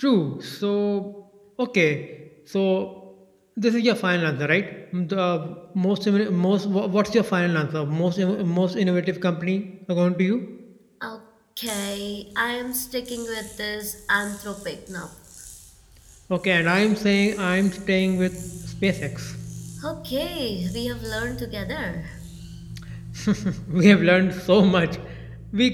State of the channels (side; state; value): both; identical; correlation 1.00